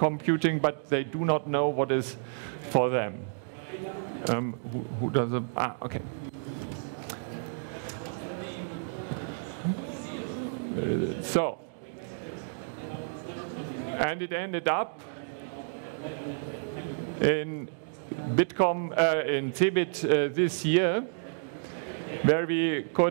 but they do not know what is for them. Who does it? Okay. So, and it ended up in Bitkom, in CeBIT this year, where we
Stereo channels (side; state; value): left; silent; digital silence